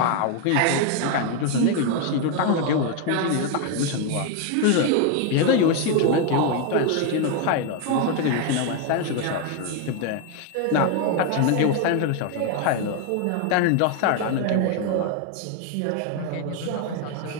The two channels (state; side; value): different; both; correlation 0.01